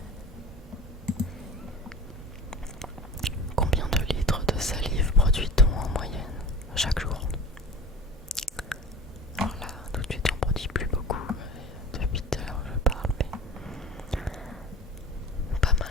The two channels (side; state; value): both; normal; correlation 0.38